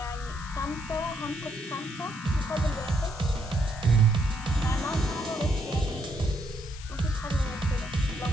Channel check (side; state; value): left; noise; hiss, 16 dB below the sound